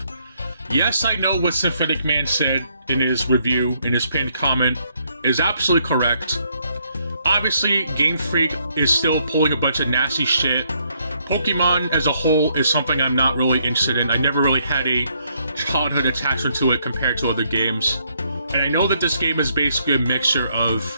Yes, I know what Symphotic Man said in his review, in his pinned comment, is absolutely correct. Obviously, Game Freak is still pulling a bunch of nasty shit. Pokemon as a whole is something I'm not really interested in. I never really had a childhood attachment to it compared to other games. And I know that this game is basically a mixture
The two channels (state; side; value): inverted; both; correlation -0.71